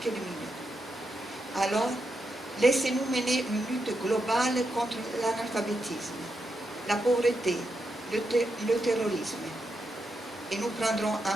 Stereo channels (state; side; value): normal; both; correlation 0.84